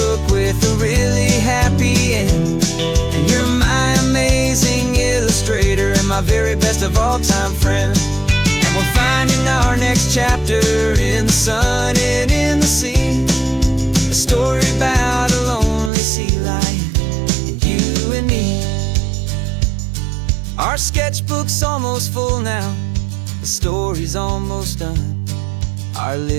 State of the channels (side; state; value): left; drops out; at 15.9 s